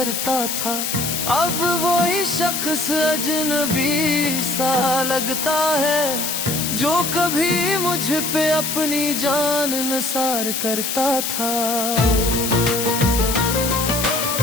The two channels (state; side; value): noise; left; hiss, 2 dB below the sound